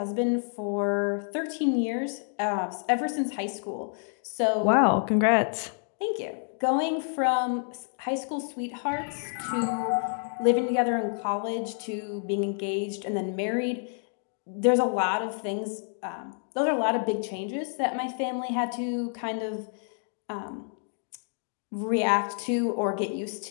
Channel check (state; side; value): silent; right; 59 dB below the other